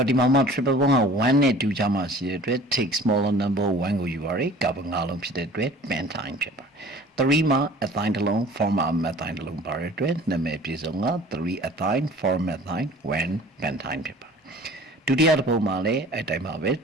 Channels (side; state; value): both; normal; correlation 0.47